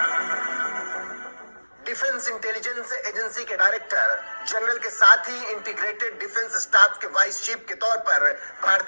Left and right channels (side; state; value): both; inverted; correlation -1.00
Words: डिफेंस इंटेलिजेंस एजेंसी के डायरेक्टर जनरल के साथ ही इंटीग्रेटेड डिफेंस स्टाफ के वाइस चीफ के तौर पर